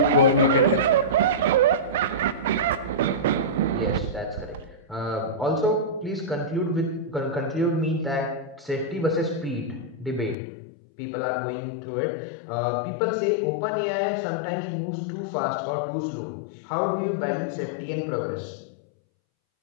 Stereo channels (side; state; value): right; drops out; at 10.4 s